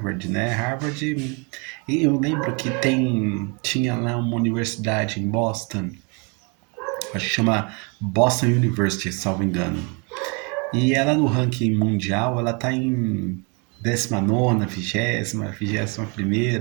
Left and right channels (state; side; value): quieter; left; 32.7 dB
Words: né? Harvard, eu lembro que tinha lá uma universidade em Boston, acho que chama Boston University, salvo engano. E ela no ranking mundial, ela tá em 19ª, 20ª,